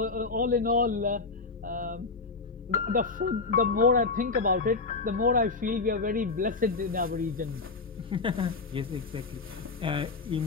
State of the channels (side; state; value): right; quieter; 4.0 dB